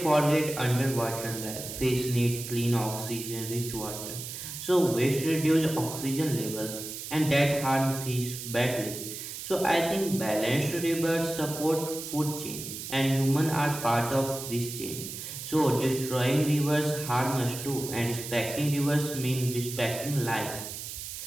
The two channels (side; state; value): right; noise; hiss, 8 dB below the sound